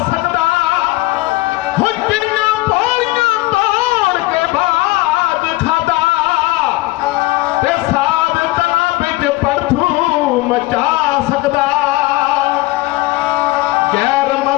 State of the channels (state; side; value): quieter; right; 19.2 dB